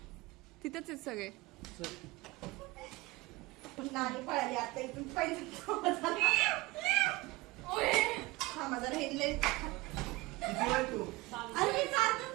तिथेच आहेत सगळे. नाही पळाली आता इथून पहिले माझा हेडले किती वेळ तू? अरे मी चालतो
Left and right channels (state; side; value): quieter; left; 21.3 dB